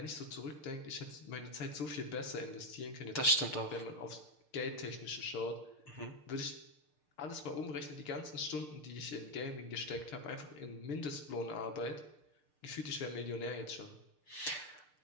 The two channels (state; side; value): late; right; 6.7 ms